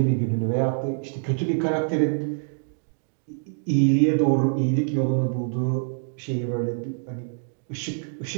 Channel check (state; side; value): silent; left; digital silence